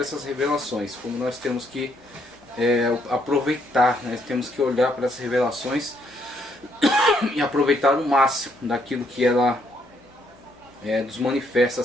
revelações, como nós temos que aproveitar, né, temos que olhar para essas revelações e aproveitar o máximo daquilo que ela nos manifesta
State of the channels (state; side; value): normal; both; correlation 0.72